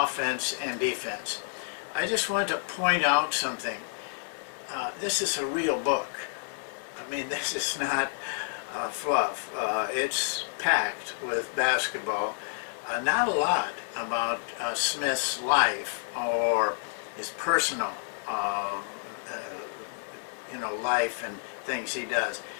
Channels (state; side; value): silent; right; digital silence